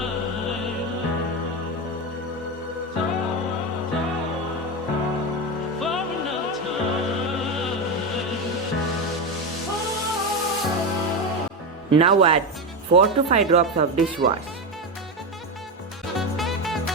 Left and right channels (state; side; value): normal; both; correlation 0.15